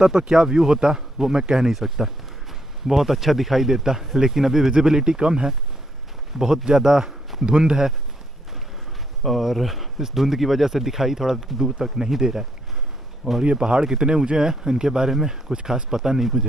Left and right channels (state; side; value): normal; both; correlation 0.73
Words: तो क्या व्यू होता वो मैं कह नहीं सकता। बहुत अच्छा दिखाई देता, लेकिन अभी विजिबिलिटी कम है, बहुत ज़्यादा धुंध है, और इस धुंध की वजह से दिखाई थोड़ा दूर तक नहीं दे रहा है। और ये पहाड़ कितने ऊंचे हैं इनके बारे में कुछ खास पता नहीं